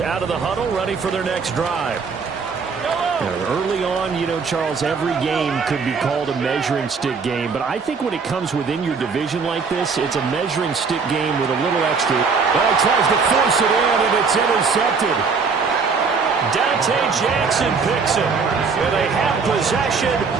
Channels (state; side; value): quieter; left; 5.1 dB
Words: of the huddle, ready for their next drive. Early on, Charles, every game could be called a measuring stick game, but I think when it comes within your division like this, it's a measuring stick game with a little extra. Well, he tries to force it in, and it's intercepted. Jackson picks it. And they have possession,